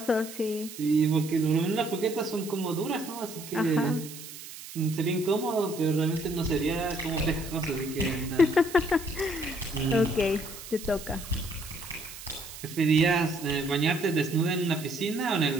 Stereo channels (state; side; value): noise; right; hiss, 13 dB below the sound